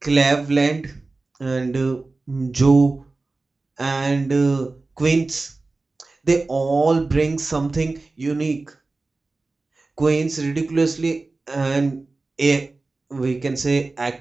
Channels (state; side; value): quieter; left; 3.5 dB